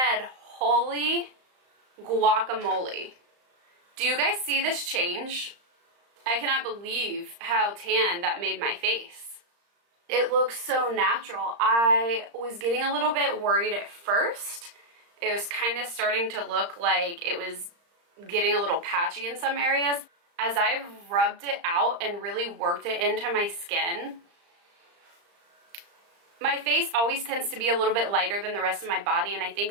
holy guacamole. Do you guys see this change? I cannot believe how tan that made my face. It looks so natural. I was getting a little bit worried at first. It was kind of starting to look like it was getting a little patchy in some areas. As I've rubbed it out and really worked it into my skin, my face always tends to be a little bit lighter than the rest of my body, and I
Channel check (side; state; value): left; late; 35 ms